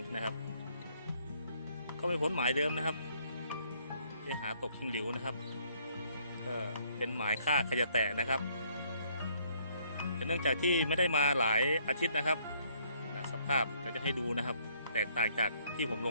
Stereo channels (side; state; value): both; inverted; correlation -0.66